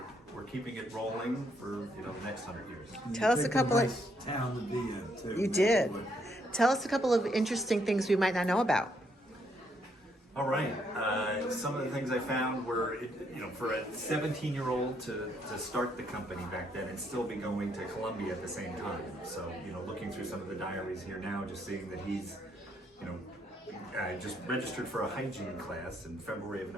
keeping it rolling for the next 100 years. Tell us a couple nice town to be in too. You did. Tell us a couple of interesting things we might not know about. All right. Some of the things I found were, for a 17-year-old to start the company back then and still be going to Columbia at the same time. So, looking through some of the diaries here now, just seeing that he's, just registered for a hygiene class in February of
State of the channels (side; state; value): both; normal; correlation 0.73